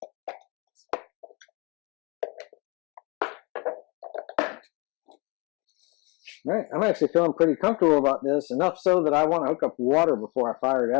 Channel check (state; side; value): quieter; right; 29.0 dB